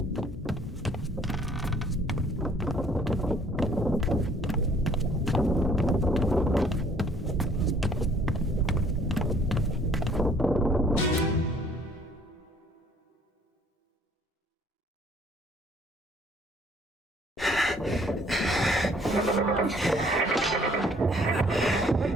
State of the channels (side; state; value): both; normal; correlation 0.59